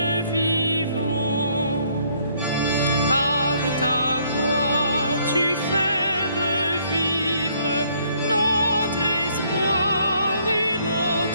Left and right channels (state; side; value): inverted; both; correlation -0.65